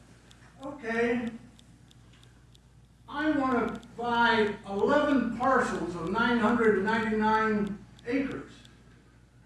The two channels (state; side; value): identical; both; correlation 1.00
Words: okay, I want to buy 11 parcels of 999 acres.